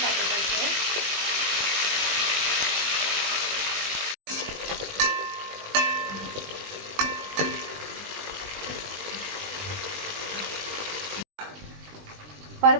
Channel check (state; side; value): late; left; 20 ms